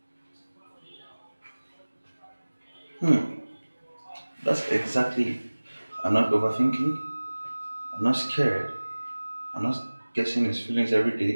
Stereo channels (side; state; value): both; inverted; correlation -1.00